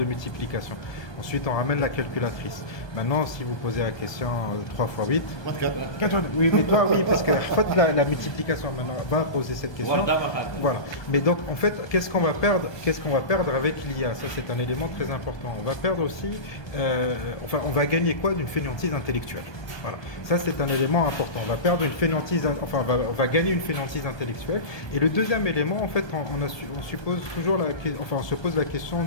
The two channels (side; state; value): right; late; 1.2 ms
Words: multiplication. Ensuite, on ramène la calculatrice. Maintenant, si vous posez la question 3 x 8... 4. Oui, mais toi, oui, parce que la multiplication, maintenant, va poser cette question. Voilà. Mais donc, en fait, qu'est-ce qu'on va perdre avec l'IA? Ça, c'est un élément très important. On va perdre aussi... on va gagner quoi d'une fainéantise intellectuelle? Voilà. Ça, c'est un élément important. On va perdre une fainéantise... on va gagner une fainéantise intellectuelle. Et le deuxième élément, en fait, on se pose la question